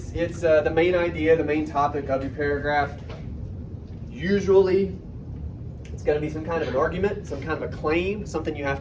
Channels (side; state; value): both; identical; correlation 1.00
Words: the main idea, the main topic of your paragraph. Usually, it's going to be some kind of an argument, some kind of a claim, something you have